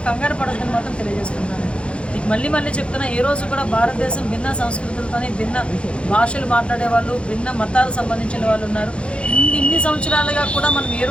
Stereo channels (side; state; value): right; late; 0.059 ms